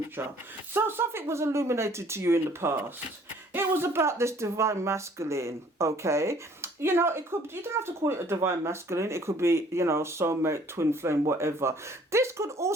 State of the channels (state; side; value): normal; both; correlation 0.57